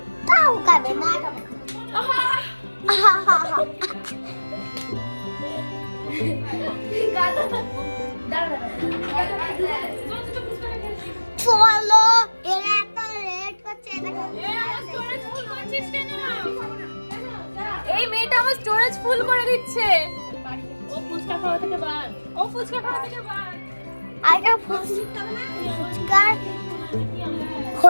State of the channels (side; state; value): both; inverted; correlation -1.00